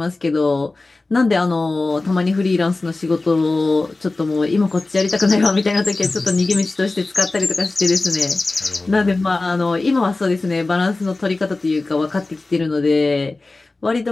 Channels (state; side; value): quieter; right; 3.3 dB